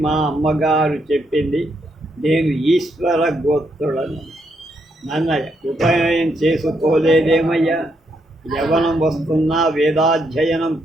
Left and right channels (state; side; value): normal; both; correlation 0.77